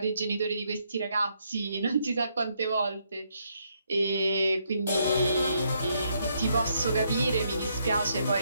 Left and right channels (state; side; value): inverted; both; correlation -0.75